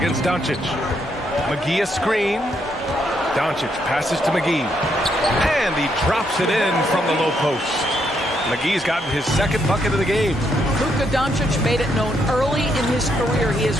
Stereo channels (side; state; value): both; normal; correlation 0.76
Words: Doncic. McGee a screen. Doncic passes to McGee. And he drops it in from the low post. McGee's gotten his 2nd bucket of the game. Luka Doncic made it known early in his career he is